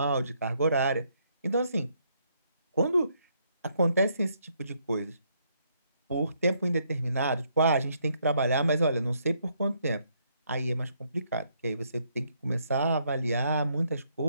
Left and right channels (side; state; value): both; inverted; correlation -0.72